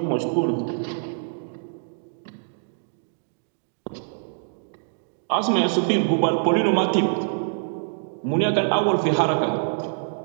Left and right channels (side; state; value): left; silent; digital silence